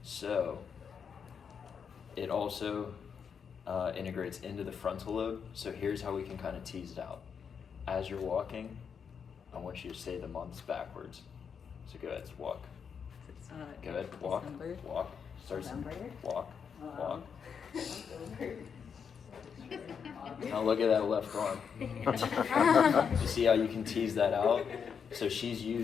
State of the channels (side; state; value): right; quieter; 6.7 dB